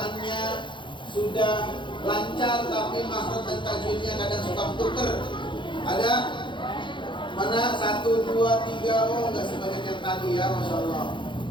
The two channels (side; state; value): right; late; 0.23 ms